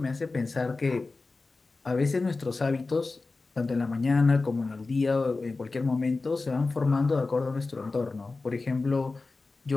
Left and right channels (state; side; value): quieter; right; 3.7 dB